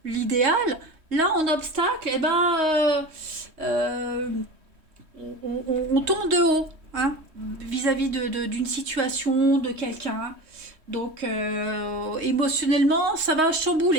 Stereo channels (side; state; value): left; late; 3.2 ms